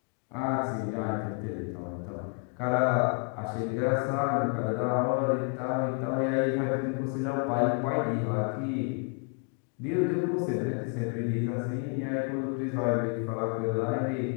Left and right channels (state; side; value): quieter; right; 38.1 dB